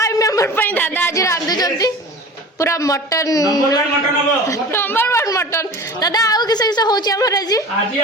मेंबर पे दादा आज रांधुचंती पूरा मटन नंबर 1 मटन हबो नंबर 1 मटन दादा आउ किसे किसे होची हमर आज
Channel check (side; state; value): both; normal; correlation 0.37